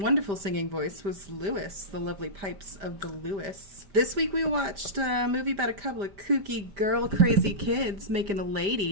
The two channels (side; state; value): left; late; 5.1 ms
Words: singing voice was Lewis, the lovely pipes of the Lewis. This week we watched a movie about a couple of kooky girl crazy kids making a